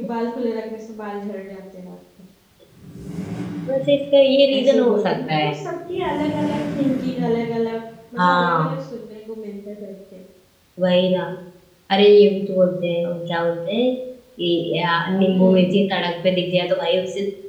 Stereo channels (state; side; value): identical; both; correlation 1.00